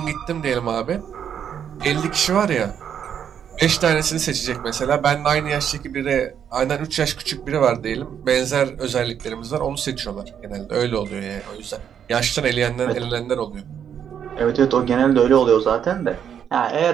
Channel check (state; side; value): quieter; left; 8.5 dB